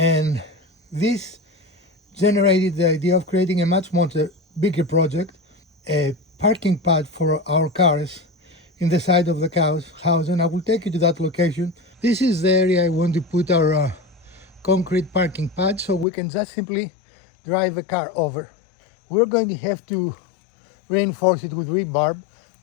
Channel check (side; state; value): right; drops out; at 16.1 s